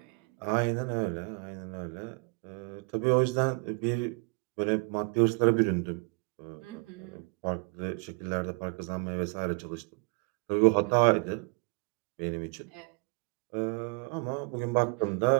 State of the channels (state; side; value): quieter; left; 34.1 dB